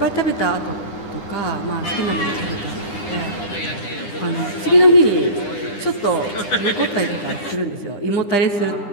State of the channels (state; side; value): late; right; 9.9 ms